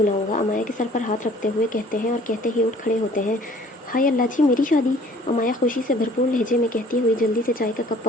अमाया के सर पर हाथ रखते हुए कहते हैं, और कहते ही उठ खड़े होते हैं। हाय अल्लाह जी, मेरी शादी! अमाया खुशी से भरपूर लहजे में कहती हुई जल्दी से चाय का कप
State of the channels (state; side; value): normal; both; correlation 0.54